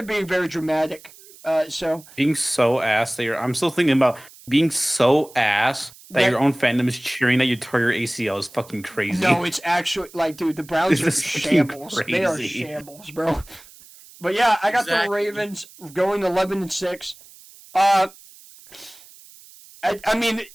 being very dramatic. Being so ass that I'm still thinking about being so ass that your own fandom is cheering that you tore your ACL is fucking crazy. No, it's actually like, dude, the Browns are shambles. Crazy. They are shambles, bro. But yeah, I got the Ravens going 11-6. I mean,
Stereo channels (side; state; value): right; noise; hiss, 22 dB below the sound